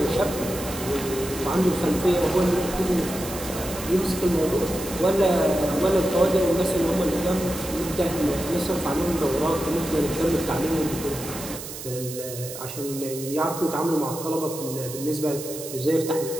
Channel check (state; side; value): noise; right; hiss, 10 dB below the sound